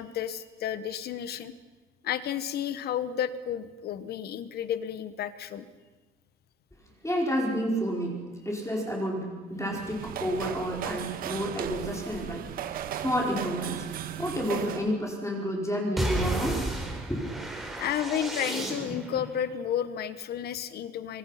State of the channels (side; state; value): both; normal; correlation 0.49